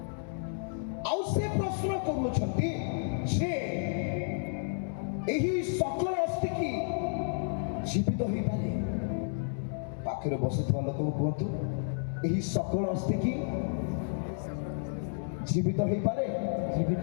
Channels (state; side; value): silent; right; digital silence